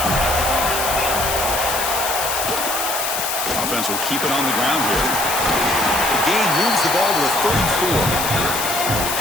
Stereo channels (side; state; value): left; noise; hiss, 2 dB below the sound